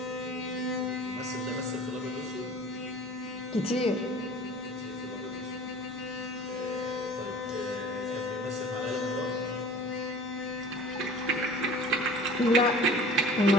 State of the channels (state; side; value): normal; both; correlation 0.43